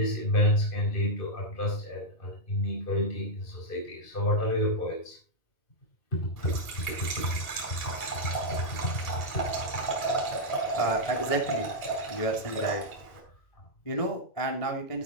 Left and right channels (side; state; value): right; late; 1.8 ms